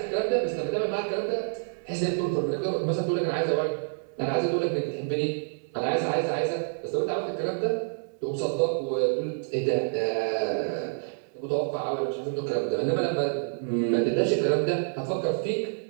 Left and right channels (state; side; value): silent; left; 60 dB below the other